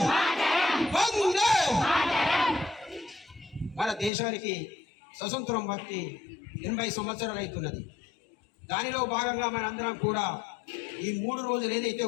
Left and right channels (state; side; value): drops out; right; at 4.1 s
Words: वंदे మన దేశానికి స్వతంత్రం వచ్చి 80 సంవత్సరాలు అవుతున్నది. దానిలో భాగంగా మనందరం కూడా ఈ 3 రోజులు ఏదైతే